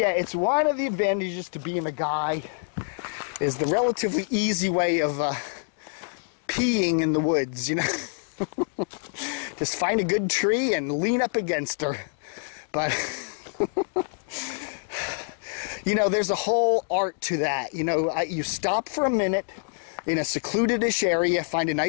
it's one of the advantages to being a guy is the relatively easy way of peeing in the woods, you know. Just find a good tree and lean up against her. But you know, there's a whole art to that. You know, you stop for a minute in a secluded-ish area, find a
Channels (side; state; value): right; silent; 61 dB below the other